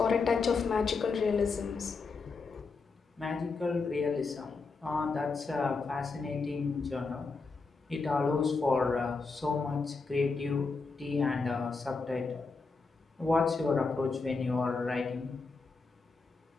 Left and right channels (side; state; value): right; quieter; 4.3 dB